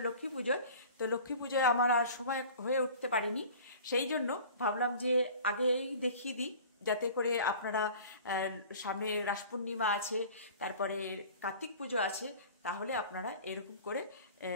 লক্ষ্মী পুজোয়, তো লক্ষ্মী পুজোয় আমার আর সময় হয়ে উঠতে পারিনি। সেই জন্য ভাবলাম যে আগেই দেখিয়ে দিই, যাতে করে আপনারা সামনে রাস পূর্ণিমা আছে, তারপরে কার্তিক পুজো আছে, তাহলে আপনারা এরকম করে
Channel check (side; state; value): both; inverted; correlation -0.43